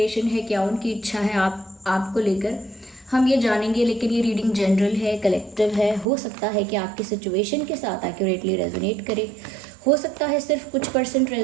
है, क्या उनकी इच्छा है आपको लेकर, हम ये जानेंगे। लेकिन ये रीडिंग जनरल है, कलेक्टिव है। हो सकता है कि आपकी सिचुएशन के साथ एक्यूरेटली रेजोनेट करे, हो सकता है सिर्फ कुछ %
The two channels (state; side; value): drops out; left; at 6.1 s